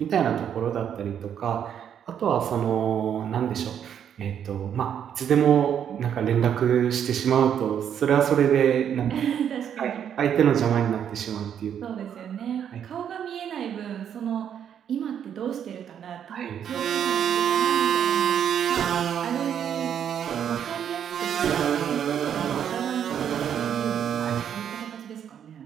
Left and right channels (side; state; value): left; quieter; 8.9 dB